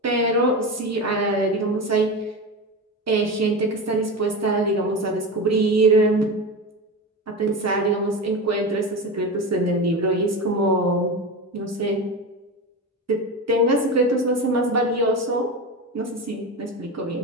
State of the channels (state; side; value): normal; both; correlation 0.22